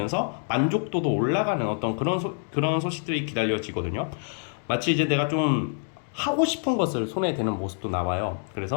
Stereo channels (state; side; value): silent; right; 61 dB below the other